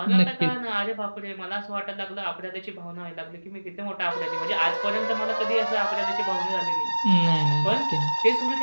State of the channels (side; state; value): both; inverted; correlation -1.00